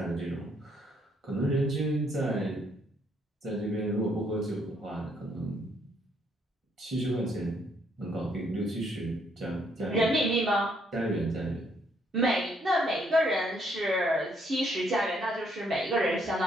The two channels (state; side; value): normal; both; correlation 0.70